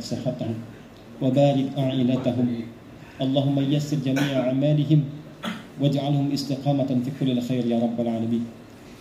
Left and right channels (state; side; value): identical; both; correlation 1.00